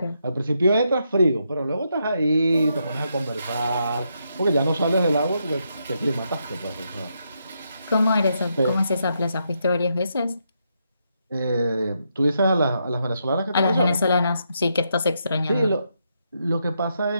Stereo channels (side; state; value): both; inverted; correlation -0.80